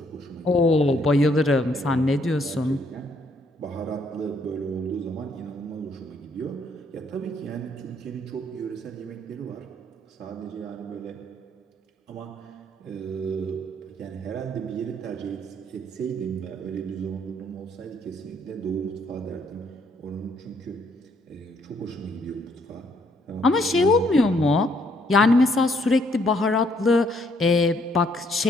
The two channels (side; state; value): both; normal; correlation 0.69